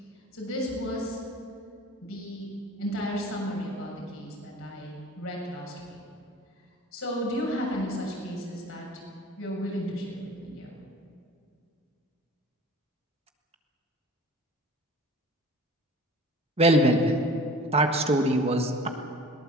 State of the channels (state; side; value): normal; both; correlation 0.44